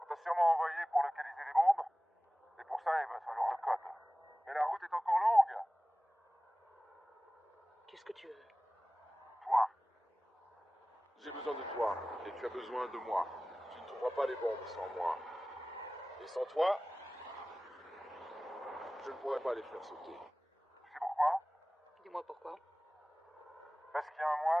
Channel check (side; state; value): both; normal; correlation 0.98